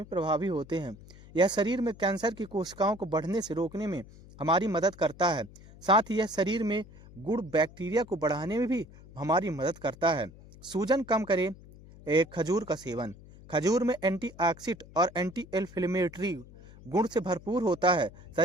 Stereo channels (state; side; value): noise; left; hum, 20 dB below the sound